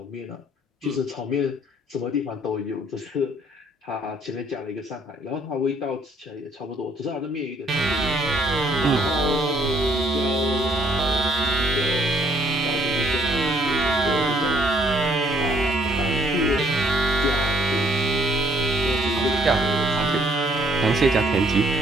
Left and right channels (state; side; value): normal; both; correlation 0.64